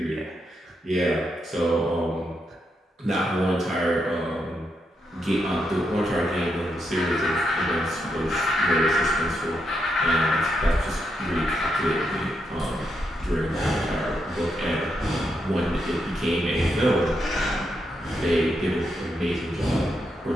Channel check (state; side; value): normal; both; correlation 0.81